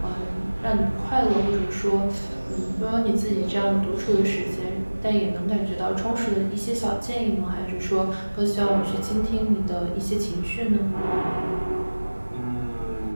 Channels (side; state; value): both; inverted; correlation -1.00